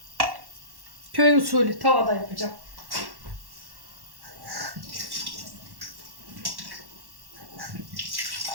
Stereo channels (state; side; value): late; left; 1.1 ms